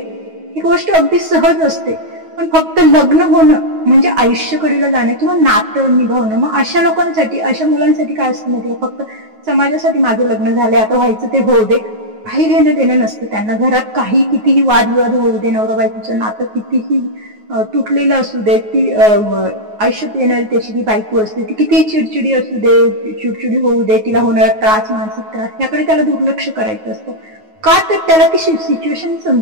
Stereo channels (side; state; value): left; late; 9.4 ms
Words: ही गोष्ट अगदी सहज असते, पण फक्त लग्न होणं म्हणजे आयुष्यकडीला जाणं किंवा नातं निभावणं. मग अशा लोकांसाठी, अशा मुलांसाठी काय असतं माहिती, फक्त समाजासाठी माझं लग्न झालंय आता व्हायचं ते होऊ दे, काही घेणं देणं नसतं त्यांना. घरात काही कितीही वादविवाद होऊ दे, नवरा बायकोचं नातं कितीही तुटलेलं असू दे, ती आयुष्यात येणारी त्याची ती बायको असते, ती कितीही चिडचिडी असू दे, चिडचिडी होऊ दे, तिला होणारा त्रास, मानसिक त्रास, याकडे त्याला दुर्लक्ष करायचं असतं. का तर त्याला ती सिच्युएशन